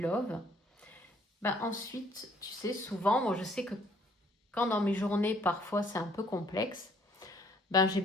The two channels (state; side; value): normal; both; correlation 0.62